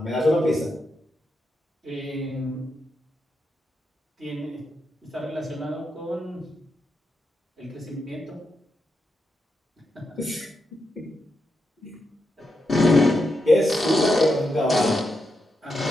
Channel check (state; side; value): normal; both; correlation 0.85